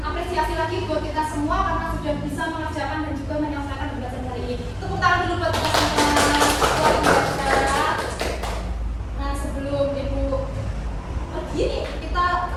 lagi buat kita semua karena sudah bisa mengerjakan dan juga menyelesaikan pembelajaran hari ini. Tepuk tangan dulu buat kita semua. Luar biasa. Nah, sebelum Ibu pergi nih, kita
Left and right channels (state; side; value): identical; both; correlation 1.00